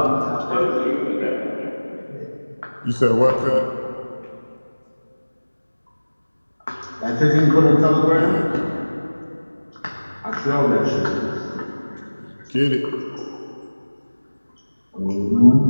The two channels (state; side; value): inverted; both; correlation -1.00